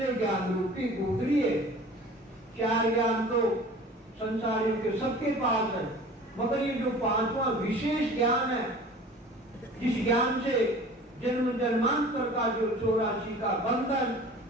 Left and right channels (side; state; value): both; normal; correlation 0.43